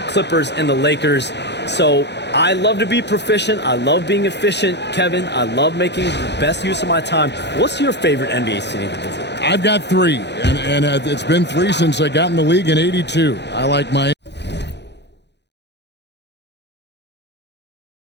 Clippers and the Lakers. So I love to be proficient. I love being efficient, Kevin. I love making the best use of my time. What's your favorite NBA city to visit? I've got 3, and it's been 3 since I got in the league in '82. I like Miami.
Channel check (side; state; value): right; late; 0.50 ms